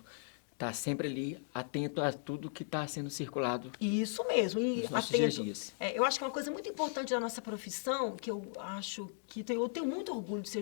Está sempre ali, atento a tudo que está sendo circulado. Isso mesmo, e atento. Dias. Eu acho que uma coisa muito importante da nossa profissão, que eu acho que eu tenho muito orgulho de ser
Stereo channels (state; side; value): silent; right; digital silence